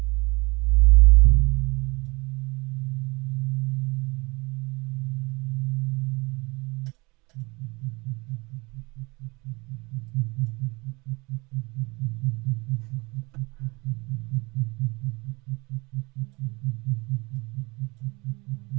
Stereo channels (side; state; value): left; quieter; 25.9 dB